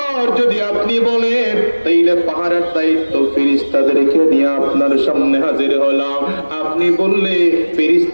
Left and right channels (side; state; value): both; inverted; correlation -1.00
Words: যদি আপনি বলেন তাইলে পাহাড়ের দায়িত্ব ফেরেশতাদেরকে নিয়ে আপনার সামনে হাজির হলাম। আপনি বললে